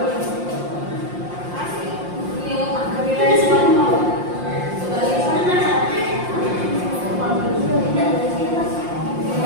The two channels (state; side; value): late; left; 5.7 ms